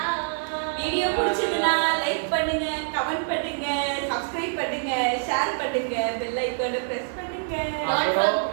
video பிடிச்சதுன்னா லைக் பண்ணுங்க, கமெண்ட் பண்ணுங்க, சப்ஸ்கிரைப் பண்ணுங்க, ஷேர் பண்ணுங்க, பெல் ஐகானை பிரஸ் பண்ணுங்க. அப்புறம்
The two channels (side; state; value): left; silent; 61 dB below the other